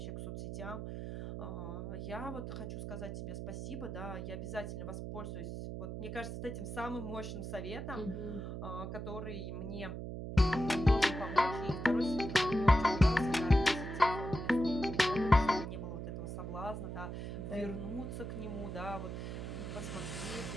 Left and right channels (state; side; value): noise; right; hum, 6 dB below the sound